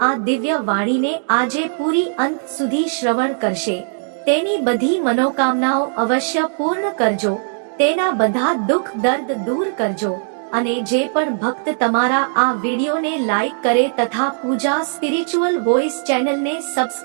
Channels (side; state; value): left; silent; 67 dB below the other